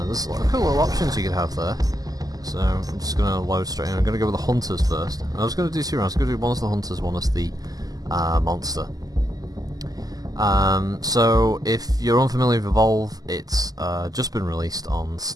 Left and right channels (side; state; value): left; late; 0.18 ms